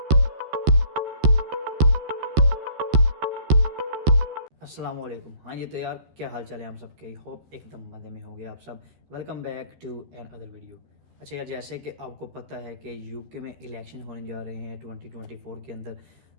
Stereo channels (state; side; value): late; left; 13 ms